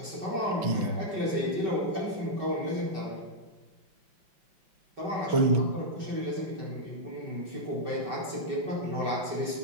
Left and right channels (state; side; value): late; left; 5.3 ms